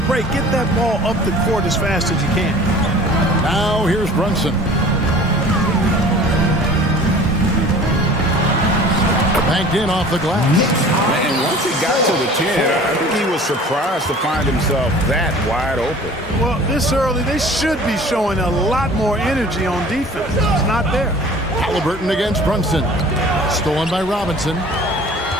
break. Get that ball up the court as fast as you can. Now here's Brunson. Banked in off the glass. And once he got to the 10, I think he was surprised to find himself that wide open. Well, this early, they should be showing a lot more energy on defense. It's not there. Halliburton against Brunson. Stolen by Robinson.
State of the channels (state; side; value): normal; both; correlation 0.45